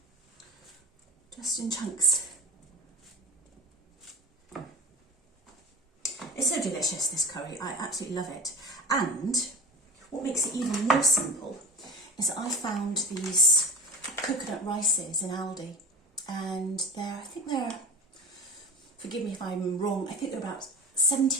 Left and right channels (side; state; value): both; normal; correlation 0.31